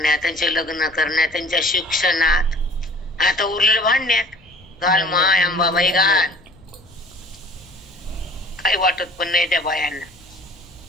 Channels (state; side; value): noise; left; rumble, 28 dB below the sound